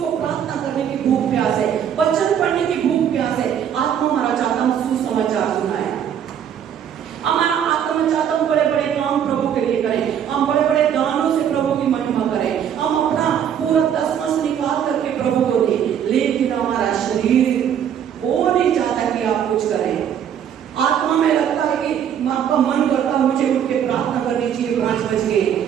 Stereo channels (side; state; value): left; quieter; 9.0 dB